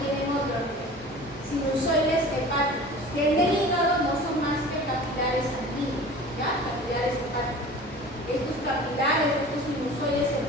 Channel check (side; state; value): both; normal; correlation 0.40